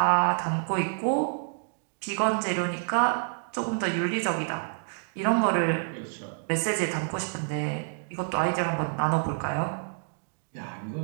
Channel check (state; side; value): silent; left; digital silence